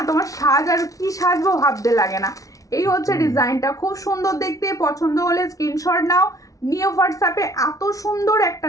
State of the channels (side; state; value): right; late; 0.17 ms